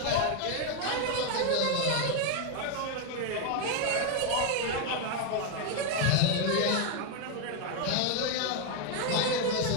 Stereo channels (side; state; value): both; different; correlation 0.01